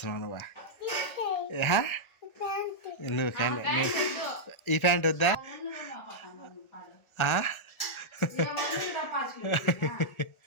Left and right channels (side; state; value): right; late; 1.3 ms